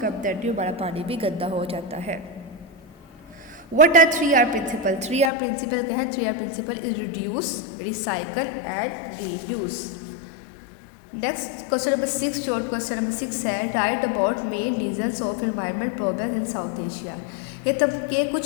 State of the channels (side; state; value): right; drops out; at 5.3 s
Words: dirty, हमारा पानी भी गंदा हो जाता है। What are 3R principle? 3R principle क्या है? 3R principle is reduce, recycle and reuse. Next question number 6, short question number 6 है write about main reasons of environment problem in South Asia. ये तब के